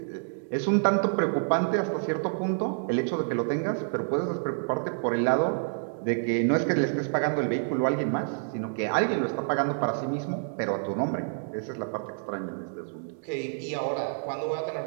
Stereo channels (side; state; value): left; silent; digital silence